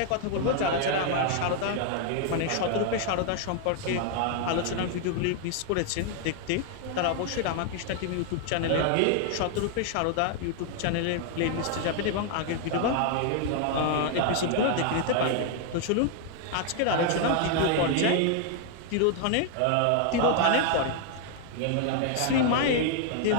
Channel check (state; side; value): different; both; correlation 0.00